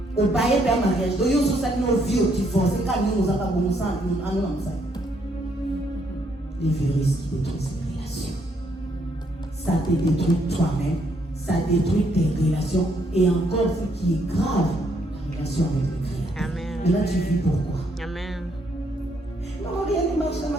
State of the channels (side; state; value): both; normal; correlation 0.72